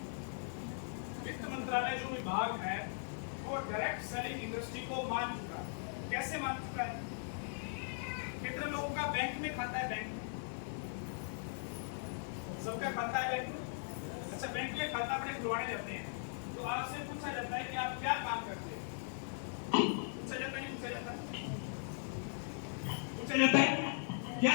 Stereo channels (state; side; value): silent; right; digital silence